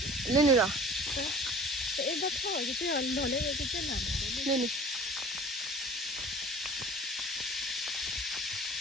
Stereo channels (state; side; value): normal; both; correlation 0.44